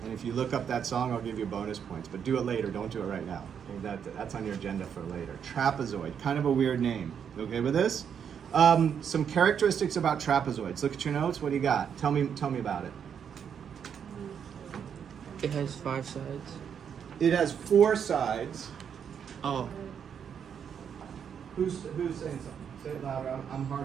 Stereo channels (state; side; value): quieter; left; 7.8 dB